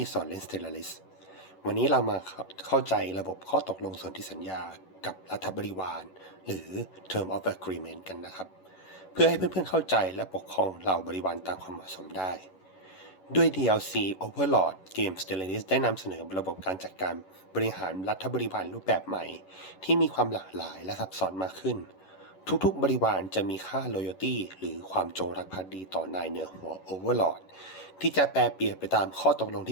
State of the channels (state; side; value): late; right; 11 ms